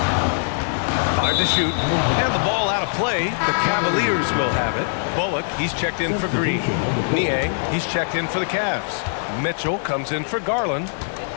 5 to shoot. And the ball out of play. The Cavaliers will have it. Bullock, he's checked in for Green. Niang, he's checked in for the Cavs. Mitchell comes in for Garland.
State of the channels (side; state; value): right; silent; 58 dB below the other